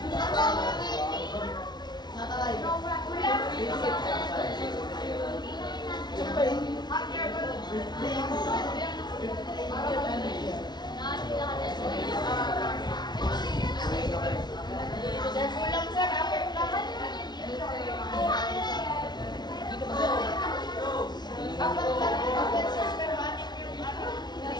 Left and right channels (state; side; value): late; right; 0.20 ms